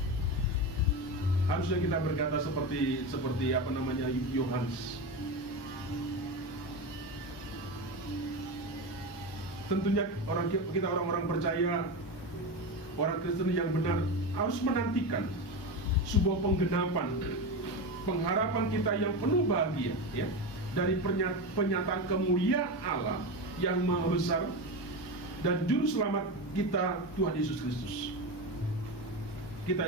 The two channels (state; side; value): late; right; 1.2 ms